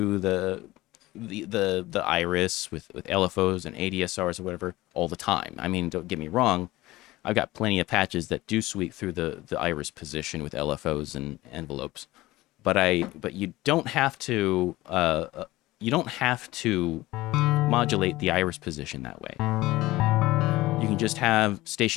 the iris with LFOs and ADSRs or whatever all the time. I mean, don't get me wrong, I've got plenty of patches that do sweep through the iris position with LFOs and envelopes, but you don't have to modulate the iris position that way. You can just have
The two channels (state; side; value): quieter; right; 18.4 dB